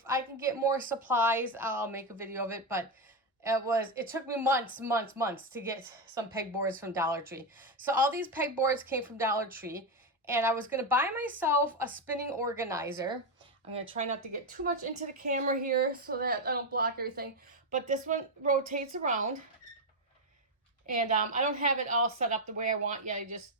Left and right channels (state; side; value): normal; both; correlation 0.07